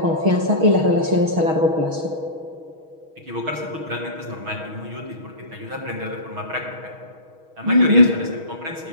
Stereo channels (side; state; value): left; late; 6.3 ms